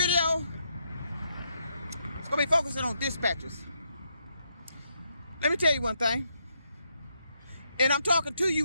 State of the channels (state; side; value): inverted; both; correlation -0.79